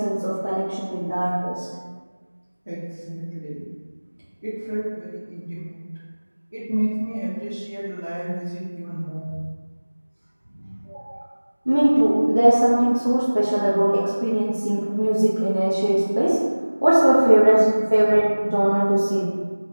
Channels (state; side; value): inverted; both; correlation -1.00